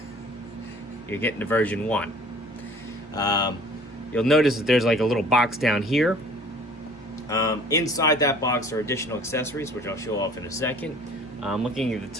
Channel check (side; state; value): both; normal; correlation 0.50